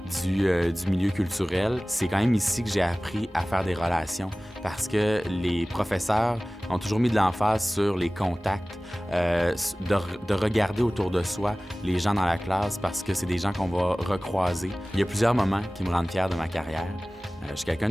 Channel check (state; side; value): normal; both; correlation 0.98